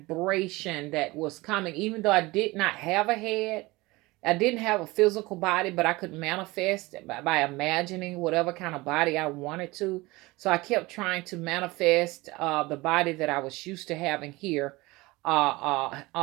that was coming, even though I did not have a head. I didn't have a physical body, but I could manifest by imagining whatever kind of body I wanted to. So I kept trying to manifest the body that I was used to having here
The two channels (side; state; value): left; quieter; 21.6 dB